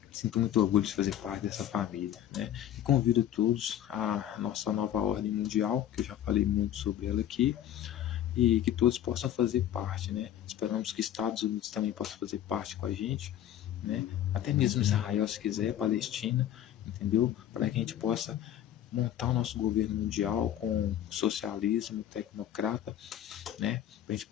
sinto muito orgulho de fazer parte dessa família, né? E convido todos à nossa nova ordem mundial, que eu já falei muito sobre ela aqui, e que todos possam fazer parte, né? Esperamos que Estados Unidos também possa fazer parte com a gente, né? Até mesmo Israel, se quiser, Palestina, entendeu? Para que a gente possa montar o nosso governo mundial com socialismo tecnocrata, né? Para a gente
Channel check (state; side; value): quieter; right; 11.2 dB